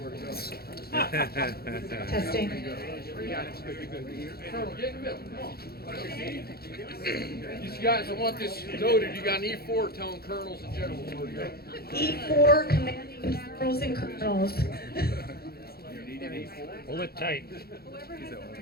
to go. Testing. Colonel, get in the middle. Come on. These guys, I want this noted. You got an E4 telling colonels and generals where to go. E4 commanding generals and colonels. Pull it tight.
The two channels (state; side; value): late; right; 0.45 ms